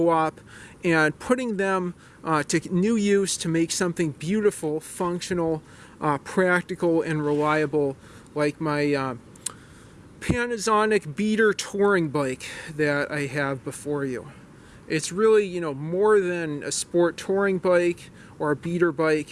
and putting them to new use to make something beautiful, functional, practical, and reliable, like my Panasonic Beater touring bike that I have before you. It's really, more than a sport touring bike or a beater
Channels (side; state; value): both; identical; correlation 1.00